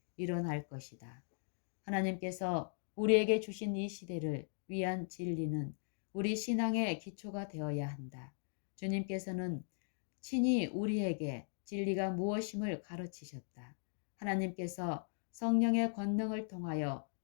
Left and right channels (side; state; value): right; silent; digital silence